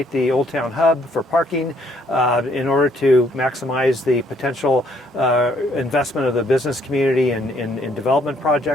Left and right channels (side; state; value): both; normal; correlation 0.66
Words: the Old Town Hub for parking in order to maximize the potential investment of the business community in development